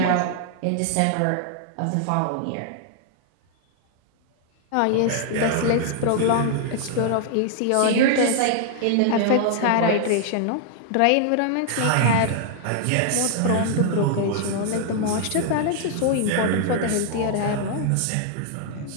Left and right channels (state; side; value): different; both; correlation 0.00